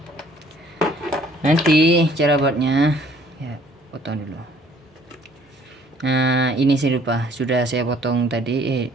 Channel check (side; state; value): both; normal; correlation 0.59